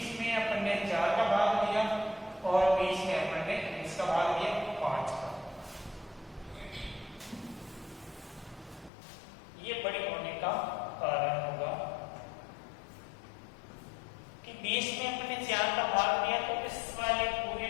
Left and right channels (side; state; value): right; drops out; at 8.9 s